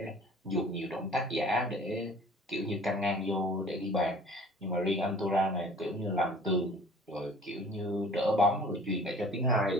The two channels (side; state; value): both; normal; correlation 0.48